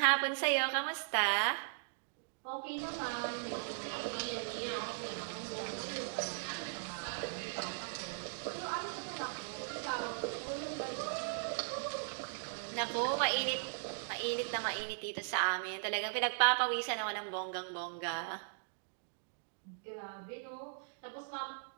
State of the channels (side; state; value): left; silent; digital silence